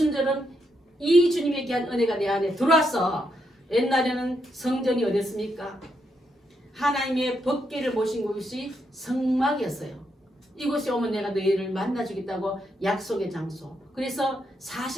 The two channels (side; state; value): both; normal; correlation 0.80